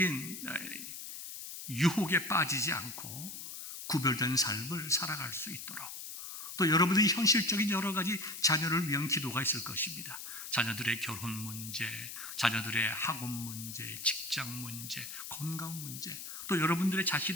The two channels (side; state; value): left; noise; hiss, 9 dB below the sound